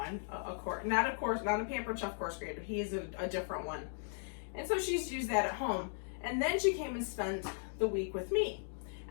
not a Pampered Chef coarse grater. He is a different one, and so she's used that at home. And then she came and spent the week with me.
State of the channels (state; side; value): silent; right; digital silence